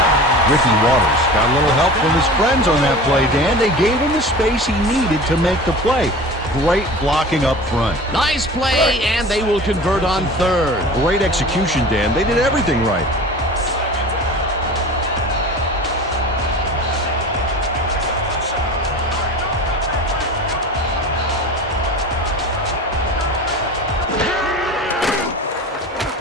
Ricky Waters got a little help from his friends on that play, Dan. They gave him the space he needed to make the play. Great blocking up front. Nice play, and they will convert on third. Great execution, Dan. They did everything right.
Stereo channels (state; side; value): normal; both; correlation 0.36